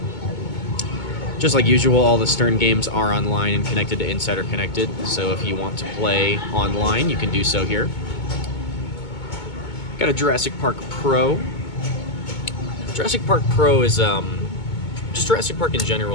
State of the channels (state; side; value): late; right; 2.2 ms